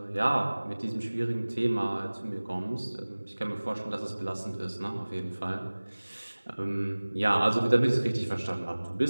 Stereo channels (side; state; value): both; inverted; correlation -1.00